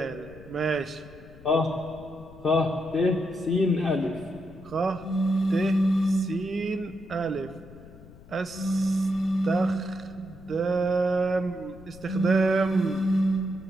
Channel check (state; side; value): noise; left; rumble, 20 dB below the sound